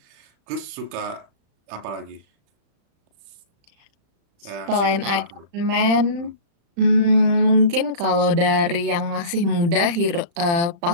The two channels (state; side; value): late; left; 35 ms